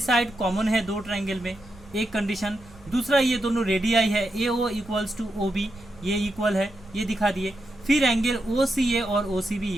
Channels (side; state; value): right; noise; rumble, 23 dB below the sound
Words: कॉमन है 2 ट्रायंगल में, एक कंडीशन। दूसरा ये दोनों रेडियाई है, A O equals to O B, ये इक्वल है, ये दिखा दिए। फिर एंगल ओ सी ए और ओ सी बी